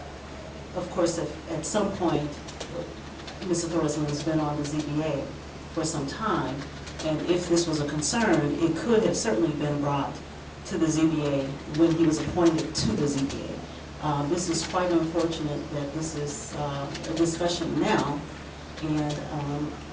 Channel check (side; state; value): both; identical; correlation 1.00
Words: course, if at some point, Mr. Thorsland has been on the ZBA for some time, and if this was a concern, it could have certainly been brought to the ZBA when he was appointed to the ZBA. This is quite unfortunate that this is a discussion now, and